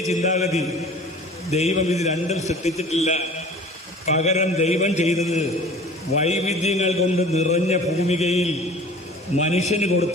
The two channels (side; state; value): both; normal; correlation 0.44